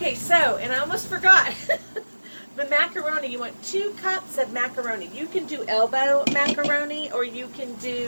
so, and I almost forgot, the macaroni, you want 2 cups of macaroni. You can do elbow macaroni, or you can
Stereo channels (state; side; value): inverted; both; correlation -1.00